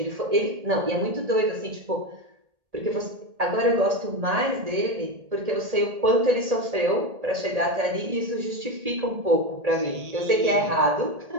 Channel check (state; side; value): late; left; 1.8 ms